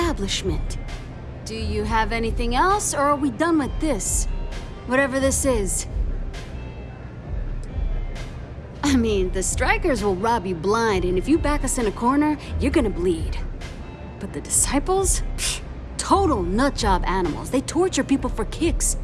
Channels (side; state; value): both; identical; correlation 1.00